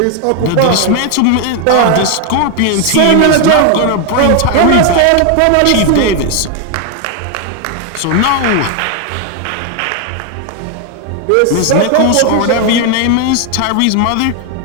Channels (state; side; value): different; both; correlation 0.01